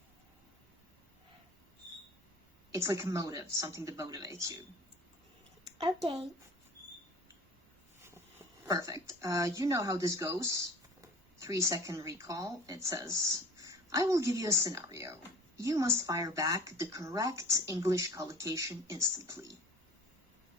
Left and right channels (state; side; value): normal; both; correlation 0.43